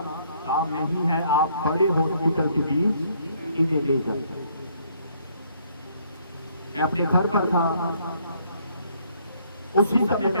काम नहीं है, आप बड़े हॉस्पिटल के बीच इन्हें ले जाओ। मैं अपने घर पर था, उसी समय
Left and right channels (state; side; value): inverted; both; correlation -0.66